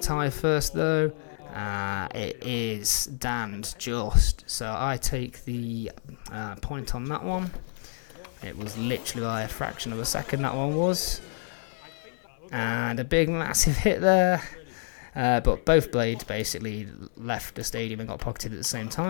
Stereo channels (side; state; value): right; silent; digital silence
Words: tie first though? It is Dan's just. So I take the point on that one. It was literally by a fraction of a second that one was. And a big massive hit there. But both blades basically left the stadium and got pocketed at the same